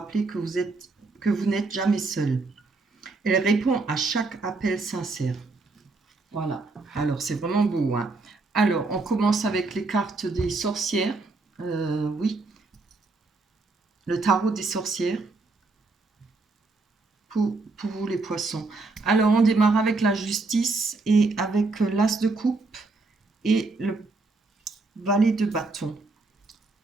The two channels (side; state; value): left; quieter; 3.7 dB